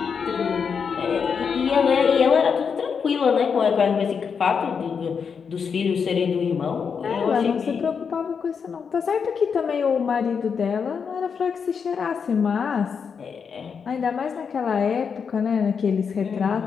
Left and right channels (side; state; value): right; quieter; 6.3 dB